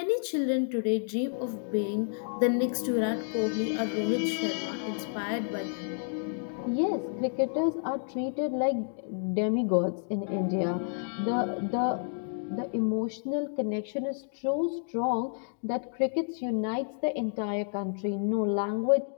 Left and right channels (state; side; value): silent; right; digital silence